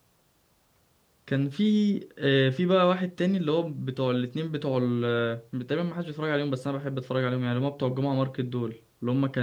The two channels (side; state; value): both; identical; correlation 1.00